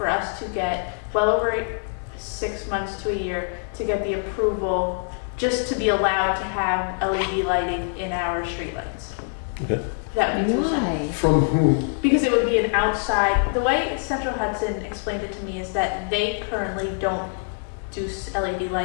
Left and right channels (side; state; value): right; silent; 60 dB below the other